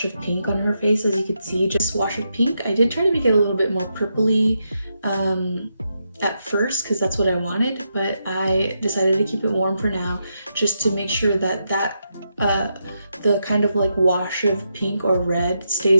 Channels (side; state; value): both; inverted; correlation -0.83